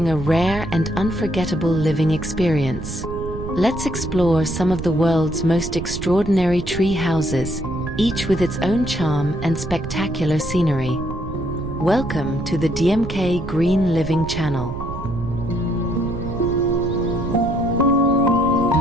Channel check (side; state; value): right; noise; rumble, 9 dB below the sound